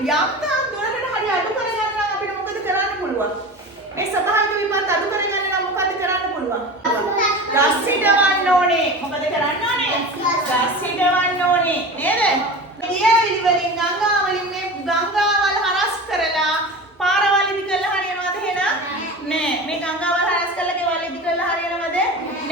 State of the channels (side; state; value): both; normal; correlation 0.32